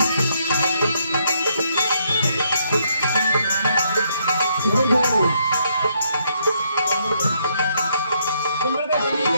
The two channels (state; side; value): inverted; both; correlation -0.74